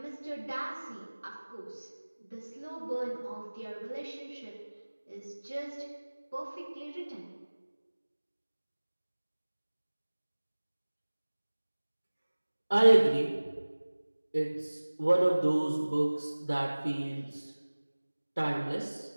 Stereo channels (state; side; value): inverted; both; correlation -1.00